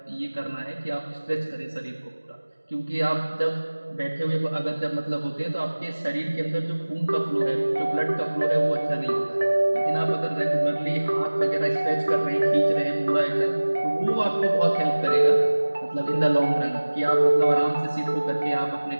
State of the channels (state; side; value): inverted; both; correlation -1.00